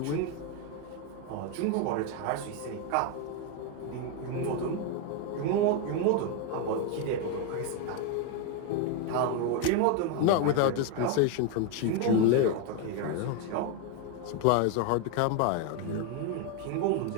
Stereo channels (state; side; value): different; both; correlation 0.01